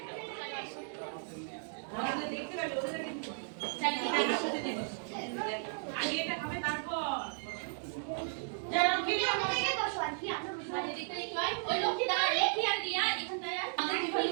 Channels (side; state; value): left; silent; digital silence